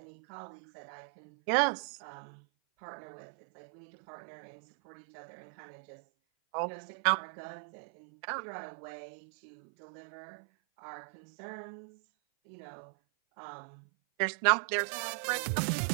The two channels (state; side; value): silent; left; 52 dB below the other